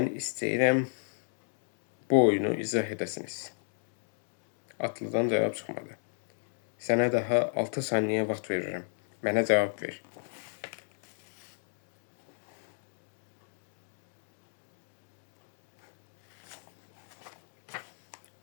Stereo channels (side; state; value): right; silent; digital silence